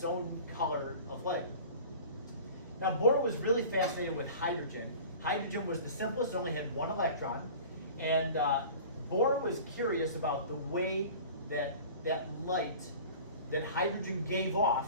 own color of light. Now Bohr was really fascinated with hydrogen. Hydrogen was the simplest, it only had one electron. And Bohr was curious about the way that light that hydrogen gave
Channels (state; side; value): inverted; both; correlation -0.41